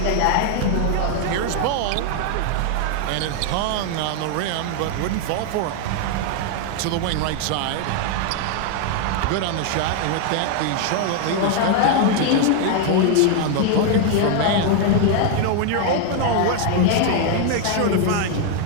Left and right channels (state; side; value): different; both; correlation 0.00